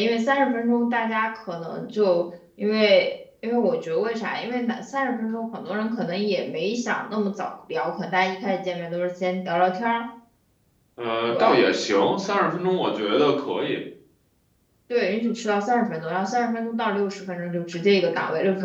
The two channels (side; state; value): both; identical; correlation 1.00